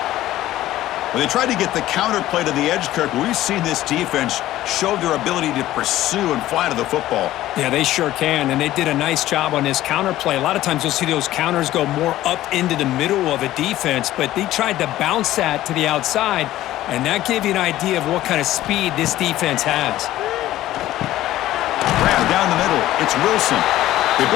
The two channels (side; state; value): right; quieter; 14.6 dB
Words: When they tried to get the counter play to the edge, Kirk, we've seen this defense show their ability to pursue and fly to the football. Yeah, they sure can, and they did a nice job on this counter play. A lot of times you'll see those counters go more up into the middle of a defense, but they tried to bounce that to the outside, and that gave you an idea of what kind of speed this defense has. Grab down the middle. It's Wilson. They